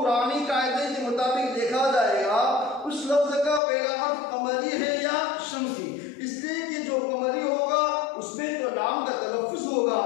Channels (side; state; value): right; drops out; at 3.6 s